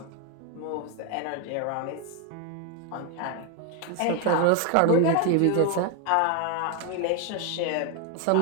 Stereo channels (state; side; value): different; both; correlation 0.01